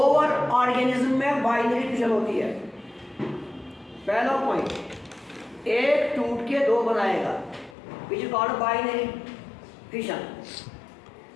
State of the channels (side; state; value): right; drops out; at 7.8 s